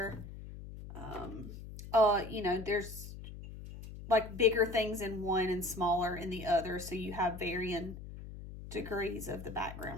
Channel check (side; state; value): left; noise; hum, 12 dB below the sound